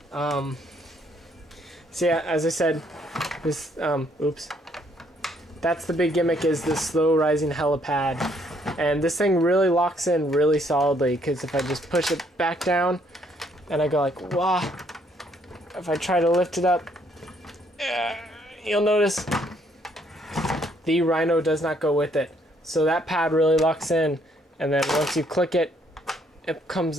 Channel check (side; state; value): both; normal; correlation 0.68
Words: So yeah, as I said, this, that's the big gimmick, is this slow rising helipad. And this thing really locks in really solidly, because if I just push it back down, and I go like, wah, if I try to lift it up, you'll notice the R.H.I.N.O does not go with it. So that pad really locks in. And then once you click it, it